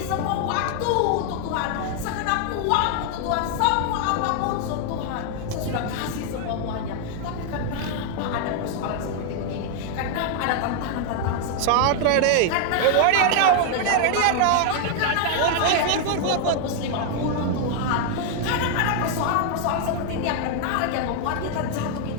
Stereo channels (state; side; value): different; both; correlation 0.00